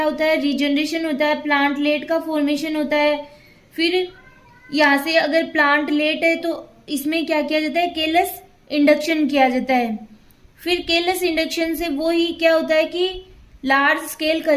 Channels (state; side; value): identical; both; correlation 1.00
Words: होता है, रीजनरेशन होता है, प्लांटलेट का फॉर्मेशन होता है। फिर यहाँ से अगर प्लांटलेट है तो इसमें क्या किया जाता है, केलस इंडक्शन किया जाता है। फिर केलस इंडक्शन से वो ही क्या होता है कि large scale